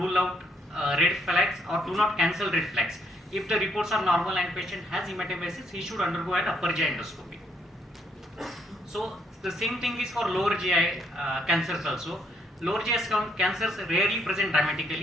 out red flags or do not cancel red flags. If the reports are normal and patient has hematemesis, he should undergo an upper GI endoscopy. So the same thing is for lower GI cancers also. Lower GI cancers rarely present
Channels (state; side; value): normal; both; correlation 0.71